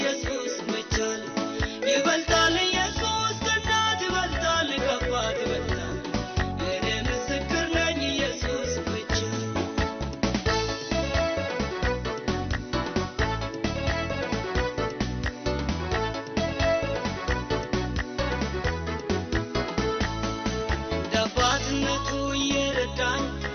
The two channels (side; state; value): both; identical; correlation 1.00